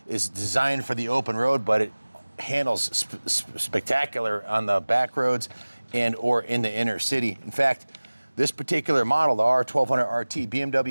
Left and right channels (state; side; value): inverted; both; correlation -1.00